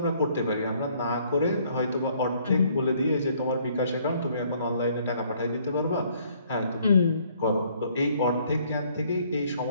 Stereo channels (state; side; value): inverted; both; correlation -0.63